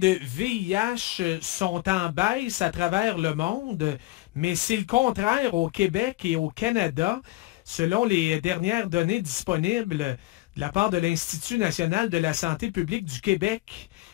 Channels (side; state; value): right; quieter; 18.9 dB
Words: VIH sont en baisse à travers le monde, mais c'est le contraire au Québec et au Canada. Selon les dernières données disponibles de la part de l'Institut national de la santé publique du Québec,